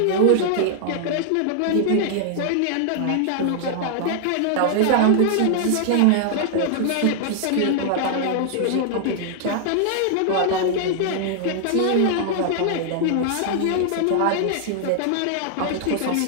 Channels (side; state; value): both; different; correlation 0.00